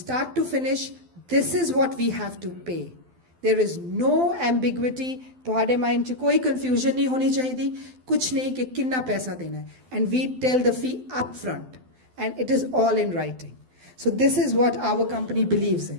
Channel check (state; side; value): late; left; 12 ms